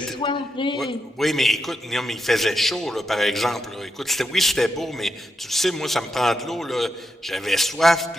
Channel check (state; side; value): normal; both; correlation 0.84